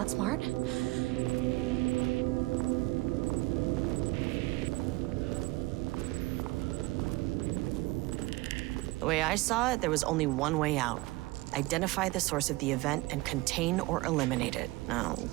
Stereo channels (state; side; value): quieter; left; 21.7 dB